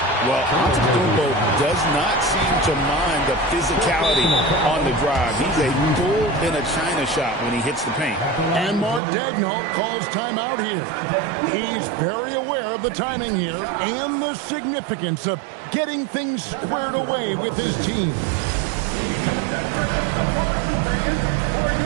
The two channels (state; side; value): drops out; left; at 9.0 s